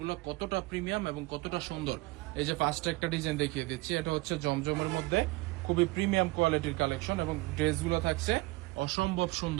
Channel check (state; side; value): quieter; left; 22.4 dB